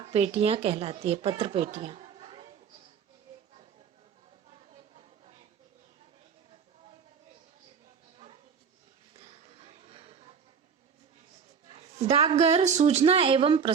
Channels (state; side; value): quieter; left; 6.7 dB